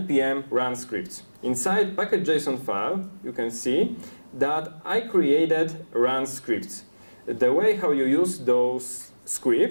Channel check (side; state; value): both; inverted; correlation -1.00